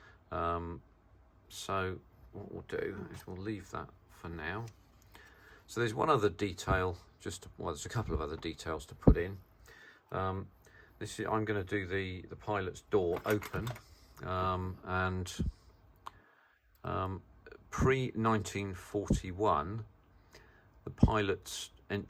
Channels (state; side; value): identical; both; correlation 1.00